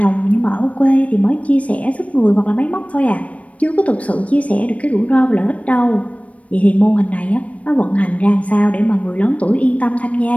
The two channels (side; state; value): right; late; 0.065 ms